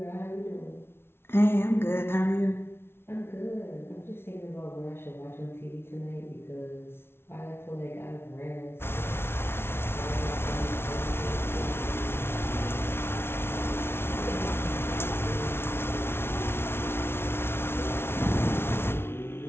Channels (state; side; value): late; right; 0.12 ms